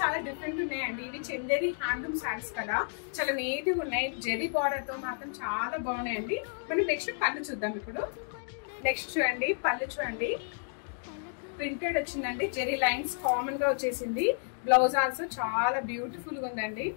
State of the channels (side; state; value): right; silent; digital silence